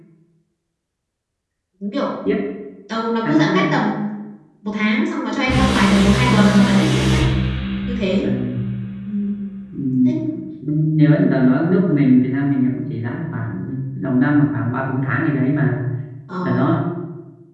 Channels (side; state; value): both; identical; correlation 1.00